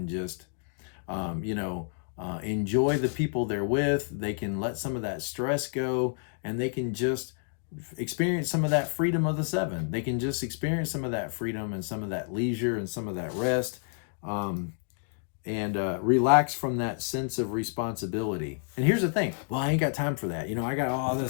just, enjoy the people they're with. They can let some of that stress go, and they can just experience some of that freedom of the 7. They can just experience some of that freedom and some of that leisure and some of that rest, and relax from that sense of responsibility. And here's the thing. Well, I ain't got time for that. I got all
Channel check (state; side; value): silent; right; 58 dB below the other